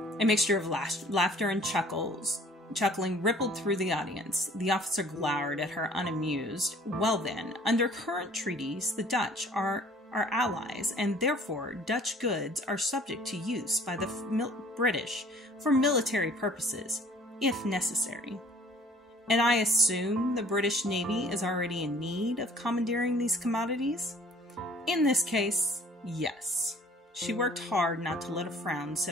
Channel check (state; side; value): normal; both; correlation 0.53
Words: A mixture of laughter and chuckling rippled through the audience. The officer glowered at her unamused. Well then, under current treaties, the Dutch are our allies, and therefore Dutch goods are subject to use by the British for military purposes, if necessary. And I assume the British Navy is already in need of commandeering these commodities? In this case, yes. She worked hard not to let a frown